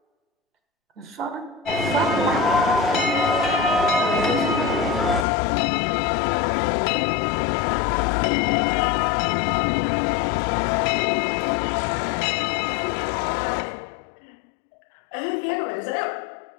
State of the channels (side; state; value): right; drops out; at 5.2 s